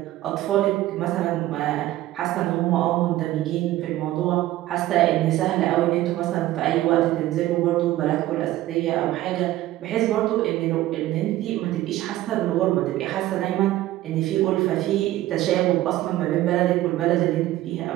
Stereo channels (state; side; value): quieter; left; 15.3 dB